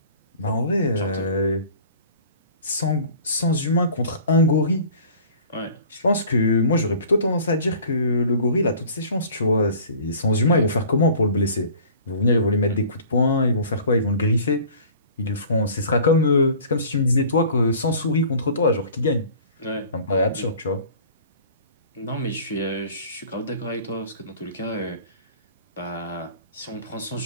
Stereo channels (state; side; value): inverted; both; correlation -0.46